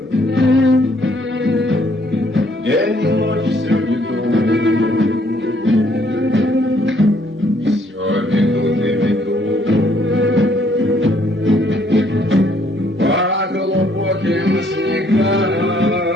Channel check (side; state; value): both; normal; correlation 0.66